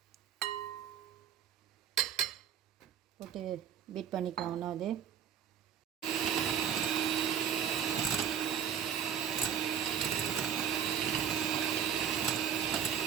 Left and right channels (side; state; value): left; quieter; 8.6 dB